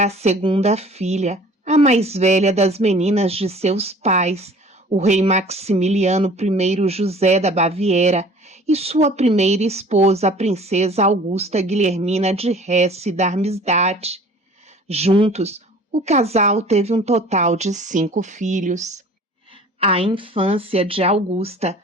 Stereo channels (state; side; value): normal; both; correlation 0.48